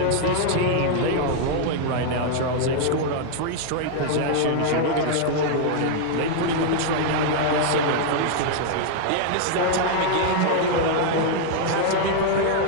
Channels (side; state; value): both; different; correlation 0.00